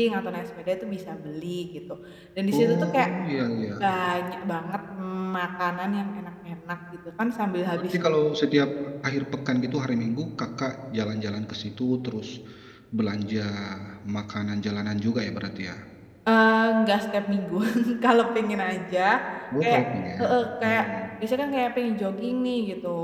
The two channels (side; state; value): both; identical; correlation 1.00